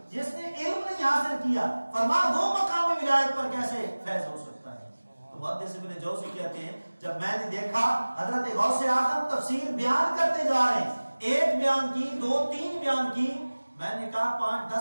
جس نے علم نہیں حاصل کیا، فرمایا وہ مقام ولایت پر کیسے فیض ہو سکتا ہے. تو محدث ابن جوزی کہتے ہیں جب میں نے دیکھا حضرت غوث اعظم تفسیر بیان کرتے جا رہے ہیں، ایک بیان کی، دو تین بیان کی، میں نے کہا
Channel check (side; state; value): both; inverted; correlation -1.00